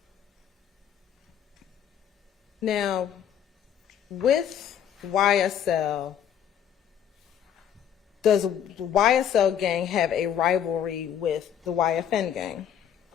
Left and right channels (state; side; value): quieter; right; 9.2 dB